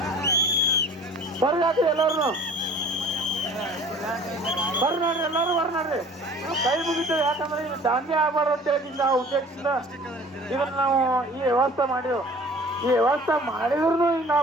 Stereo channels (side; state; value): both; normal; correlation 0.47